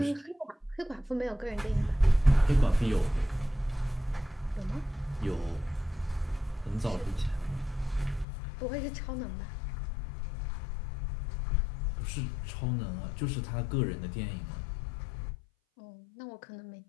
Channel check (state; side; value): drops out; right; at 8.2 s